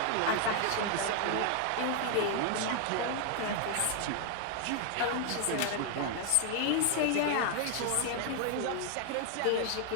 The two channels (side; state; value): both; different; correlation 0.00